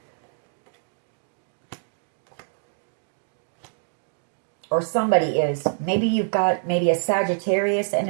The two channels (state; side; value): silent; left; digital silence